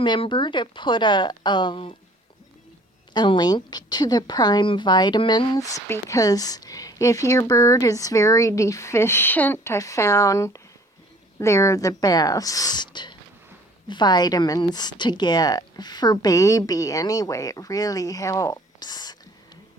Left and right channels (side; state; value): both; normal; correlation 0.54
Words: to put a link to the Prime vitamins, because if your bird is very deficient, I found they're the best vitamins to get for baby anyway. It really helps.